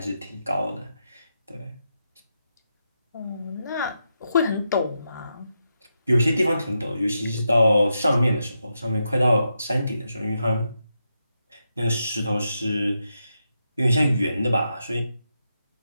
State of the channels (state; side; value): inverted; both; correlation -0.85